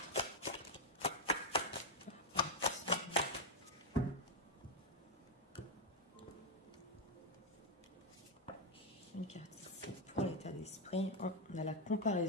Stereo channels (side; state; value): both; normal; correlation 0.01